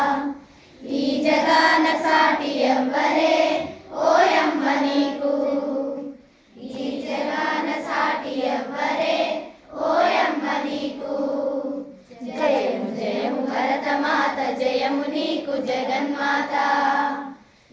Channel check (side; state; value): both; identical; correlation 1.00